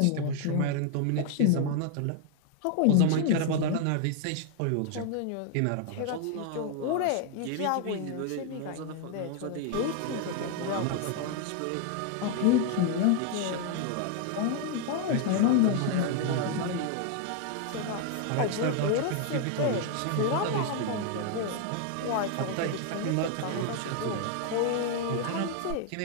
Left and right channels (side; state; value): both; different; correlation 0.00